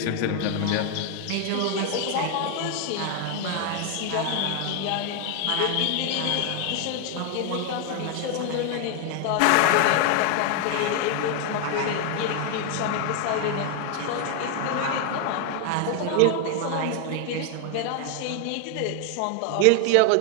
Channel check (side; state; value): both; different; correlation 0.01